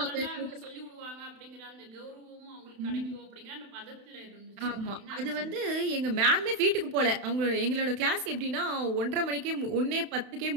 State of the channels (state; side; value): late; left; 31 ms